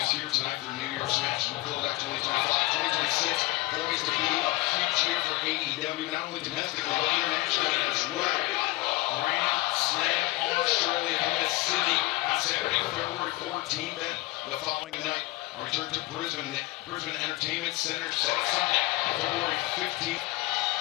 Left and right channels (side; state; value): right; quieter; 20.2 dB